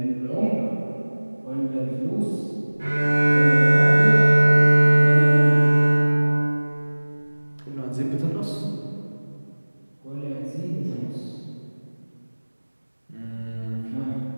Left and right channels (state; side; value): inverted; both; correlation -1.00